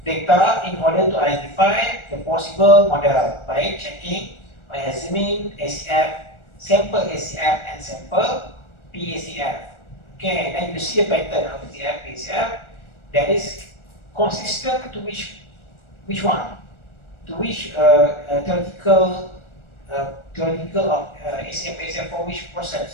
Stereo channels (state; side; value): late; right; 1.4 ms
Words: data in order to identify the possible model by examining ACF, sample ACF and sample PACF. Okay, and then you see a pattern of ACF, PACF that is consistent to which one? To which theoretical of ACF, PACF for which